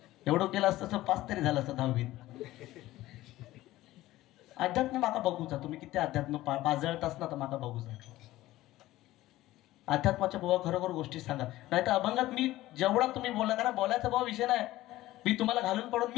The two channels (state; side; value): quieter; right; 16.3 dB